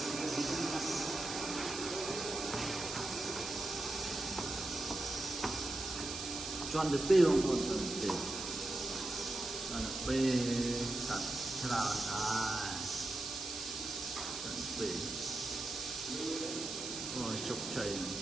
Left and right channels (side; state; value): right; noise; hiss, 6 dB below the sound